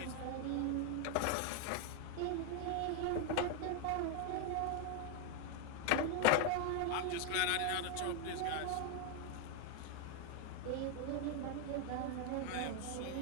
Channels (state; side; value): different; both; correlation 0.01